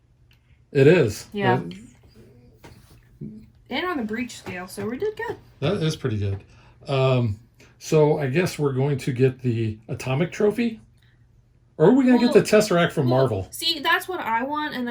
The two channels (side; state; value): both; identical; correlation 1.00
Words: It is. Yeah. And on the breach scale, so we did good. That is pretty good. So I guess we're going to get the atomic trophy, or are we going to get the Tesseract from Marvel? See, that's what I want, and